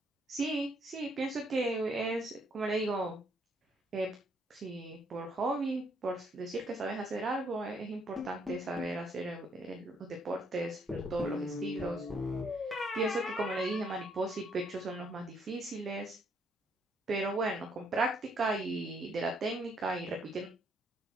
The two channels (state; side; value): normal; both; correlation 0.70